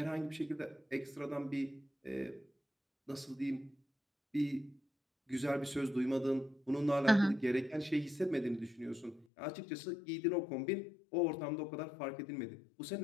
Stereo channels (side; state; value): right; drops out; at 9.2 s